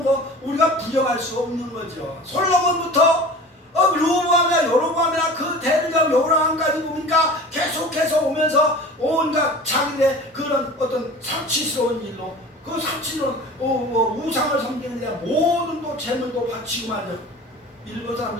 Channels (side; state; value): both; normal; correlation 0.38